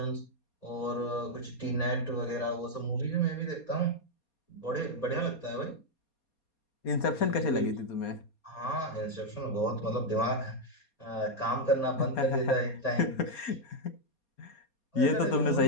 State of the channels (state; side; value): late; right; 4.2 ms